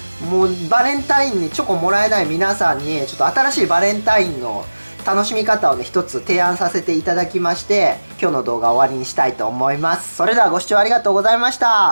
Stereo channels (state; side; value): inverted; both; correlation -1.00